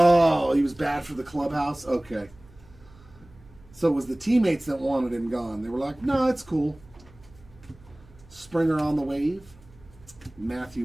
he was bad for the clubhouse? Okay. So it was the teammates that wanted him gone. They were like, no, it's cool. Springer on the wave.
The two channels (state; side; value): noise; right; hum, 25 dB below the sound